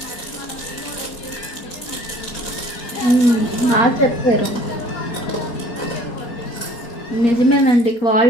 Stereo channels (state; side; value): late; right; 4.3 ms